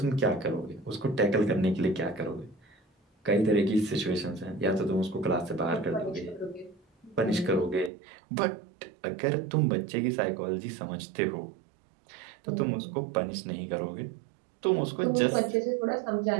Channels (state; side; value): drops out; left; at 7.9 s